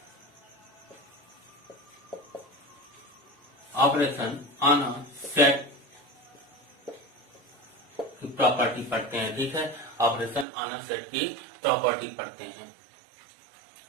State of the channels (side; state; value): left; drops out; at 10.5 s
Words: ऑन अ सेट की प्रॉपर्टी पढ़ते हैं। ठीक है, ऑपरेशन ऑन अ सेट की प्रॉपर्टी पढ़ते हैं।